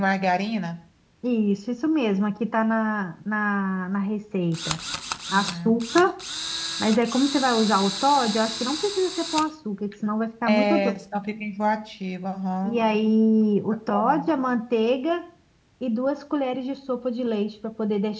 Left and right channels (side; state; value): both; identical; correlation 1.00